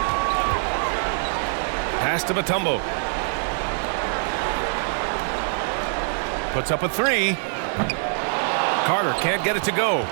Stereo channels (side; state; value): left; silent; 63 dB below the other